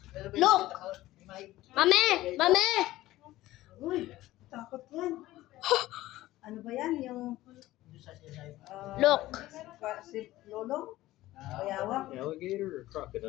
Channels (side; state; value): right; quieter; 16.3 dB